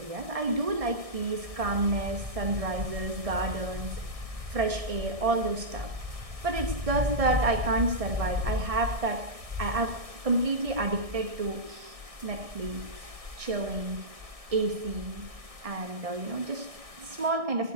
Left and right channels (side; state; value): left; late; 1.6 ms